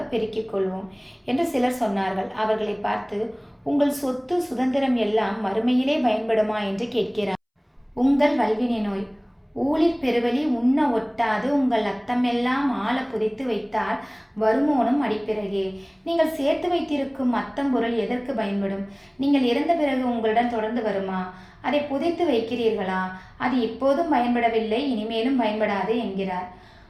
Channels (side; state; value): both; identical; correlation 1.00